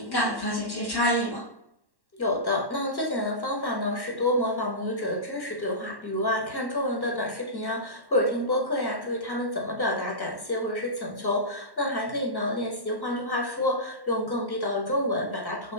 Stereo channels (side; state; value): right; late; 1.1 ms